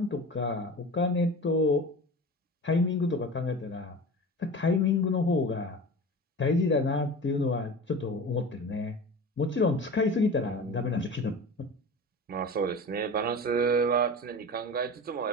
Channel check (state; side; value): normal; both; correlation 0.33